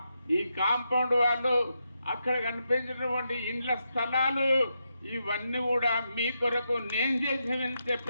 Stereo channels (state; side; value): inverted; both; correlation -0.84